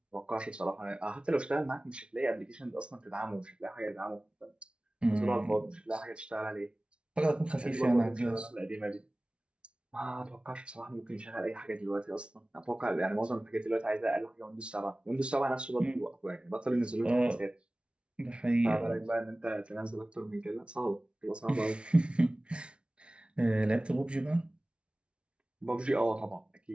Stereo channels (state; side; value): late; left; 0.058 ms